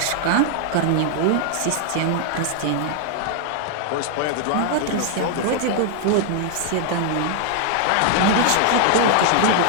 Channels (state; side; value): different; both; correlation 0.00